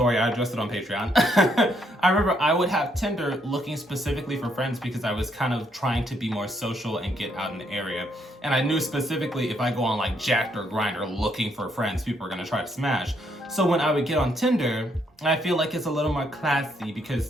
I addressed it on Patreon. I remember I would have Tinder looking specifically for friends because I was kind of trying to be more social and get out in the area. And I knew specifically if I go on like Jack'd or Grindr looking for friends, people are gonna try to smash. So when I would get on Tinder, I feel like it's a little more classy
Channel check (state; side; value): normal; both; correlation 0.73